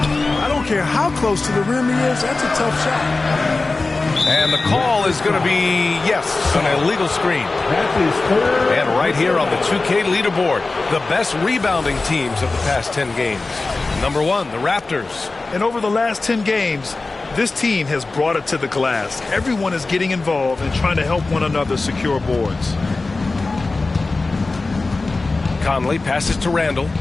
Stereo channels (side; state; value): right; quieter; 3.5 dB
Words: I don't care how close to the rim he is, that's a tough shot. And the call is going to be, yes, an illegal screen. And right here on the 2K leaderboard, the best rebounding teams of the past 10 games. Number 1, the Raptors. And over the last 10 games, this team has brought it to the glass. Everyone is getting involved and trying to help one another secure boards. Conley passes to Randall.